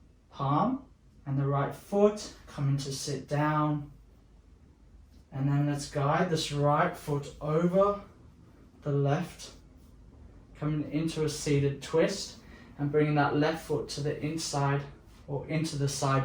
palm and the right foot, coming to sit down. And then let's guide this right foot over the left, coming into a seated twist and bringing that left foot to the inside or into the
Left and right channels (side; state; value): both; identical; correlation 1.00